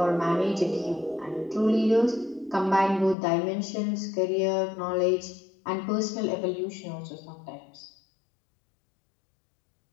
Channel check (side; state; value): right; drops out; at 3.2 s